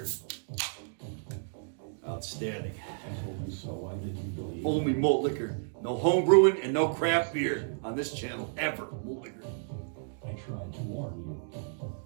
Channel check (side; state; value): left; silent; digital silence